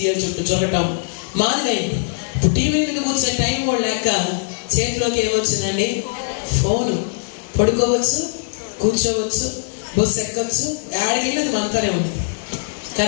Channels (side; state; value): right; silent; digital silence